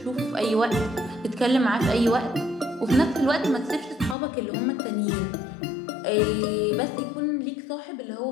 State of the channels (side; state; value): right; drops out; at 4.2 s